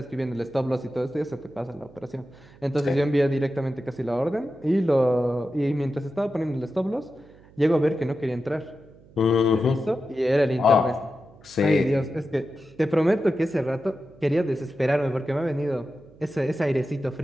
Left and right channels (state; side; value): noise; right; hum, 25 dB below the sound